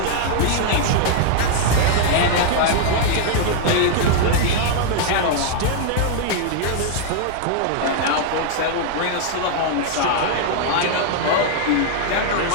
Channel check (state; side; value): different; both; correlation 0.00